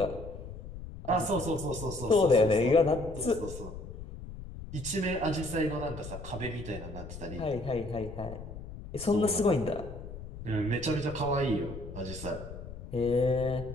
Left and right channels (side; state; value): left; noise; rumble, 11 dB below the sound